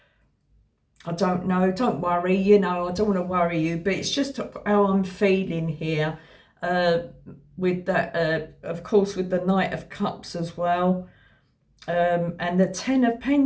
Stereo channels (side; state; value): both; identical; correlation 1.00